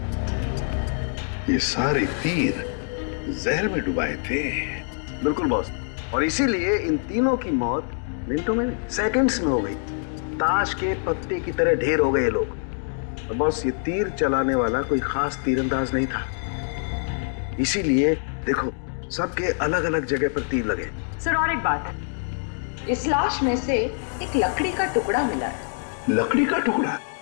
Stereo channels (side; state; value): right; silent; digital silence